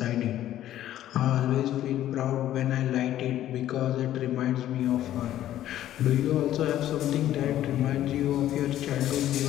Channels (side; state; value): right; quieter; 12.6 dB